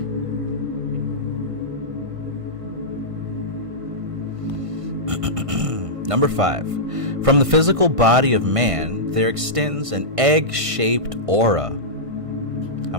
Number 5. From the physical body of man, there extends an egg-shaped aura. How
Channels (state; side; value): late; left; 1.5 ms